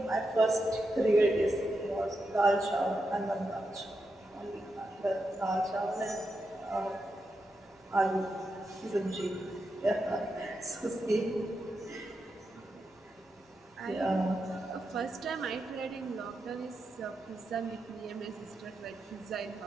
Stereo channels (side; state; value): both; normal; correlation 0.86